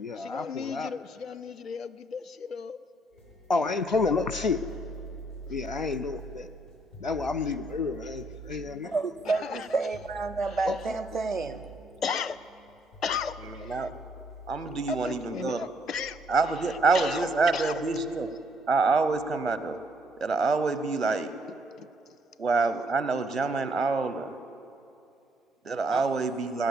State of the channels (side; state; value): both; normal; correlation 0.69